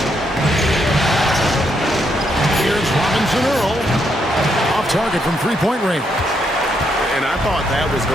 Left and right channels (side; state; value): both; normal; correlation 0.77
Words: Here's Robinson Earl. Off target from three-point range. And I thought that was